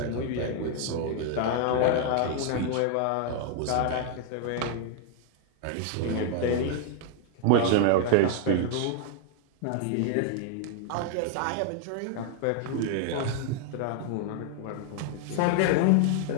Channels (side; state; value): both; different; correlation 0.00